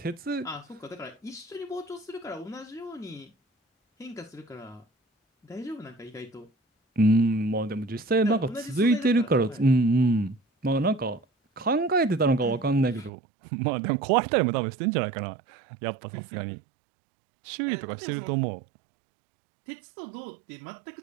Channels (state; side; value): drops out; left; at 13.1 s